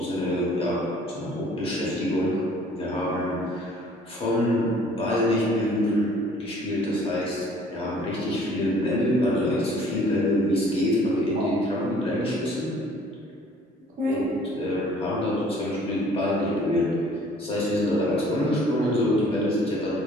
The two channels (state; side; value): normal; both; correlation 0.55